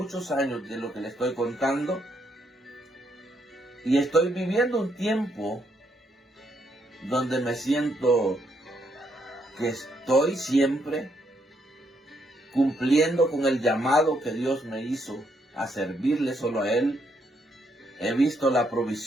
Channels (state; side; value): normal; both; correlation 0.75